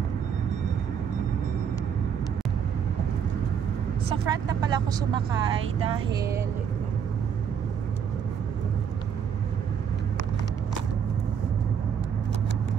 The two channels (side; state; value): left; quieter; 7.6 dB